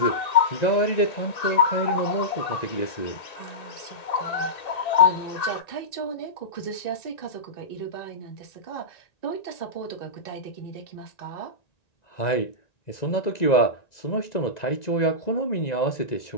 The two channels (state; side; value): late; right; 1.9 ms